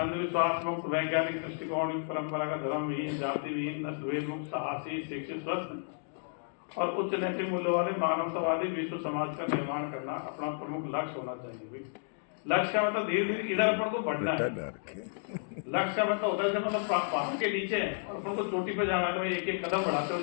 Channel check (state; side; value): silent; right; digital silence